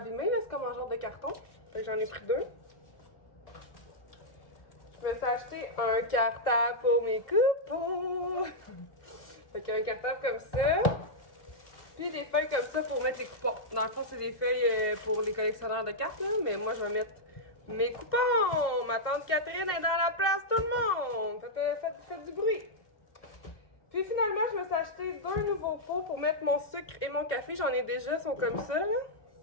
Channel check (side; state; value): right; late; 1.6 ms